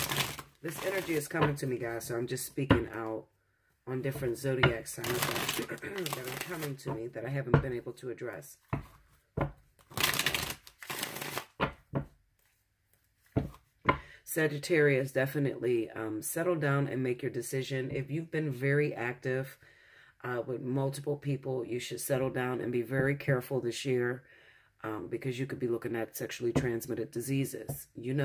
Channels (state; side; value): identical; both; correlation 1.00